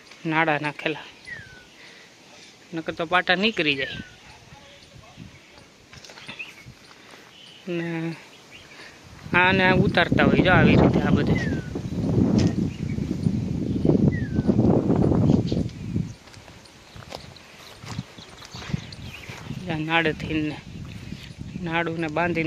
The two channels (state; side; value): identical; both; correlation 1.00